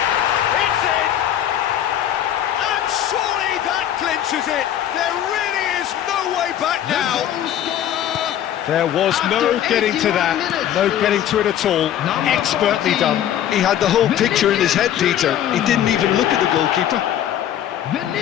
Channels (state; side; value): quieter; right; 10.9 dB